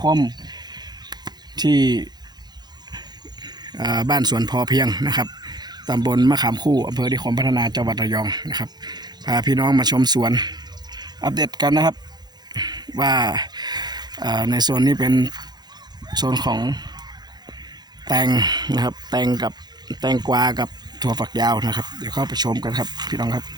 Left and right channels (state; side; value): late; left; 0.20 ms